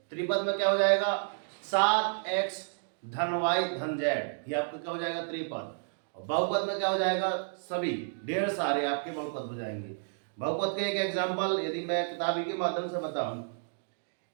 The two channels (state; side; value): silent; left; digital silence